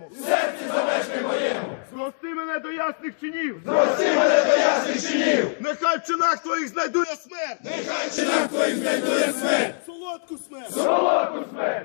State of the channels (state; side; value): silent; right; digital silence